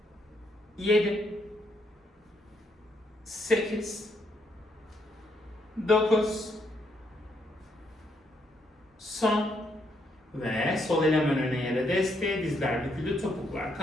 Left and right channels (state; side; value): normal; both; correlation 0.75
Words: 7, 8, 9, son. Ve sol el hemen öne yere desteğe, dizler büküldü, topuklar